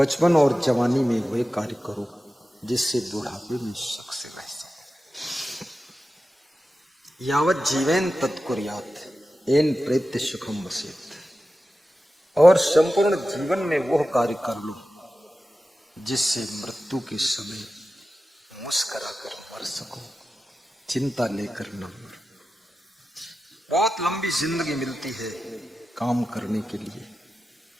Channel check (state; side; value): normal; both; correlation 0.93